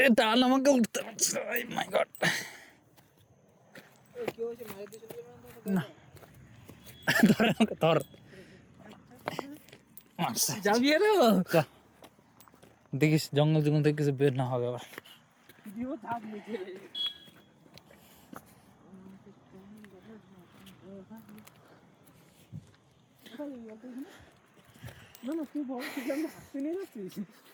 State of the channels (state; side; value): identical; both; correlation 1.00